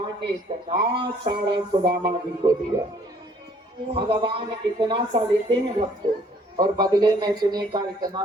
ने इतना सारा सुदामा जी को दिया। भगवान इतना सा लेते हैं भक्तों और बदले में सुने का इतना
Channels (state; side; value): normal; both; correlation 0.61